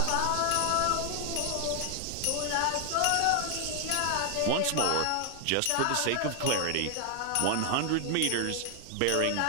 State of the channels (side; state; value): both; different; correlation 0.00